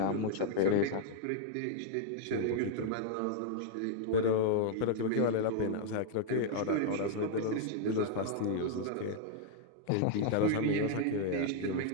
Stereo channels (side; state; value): both; different; correlation -0.01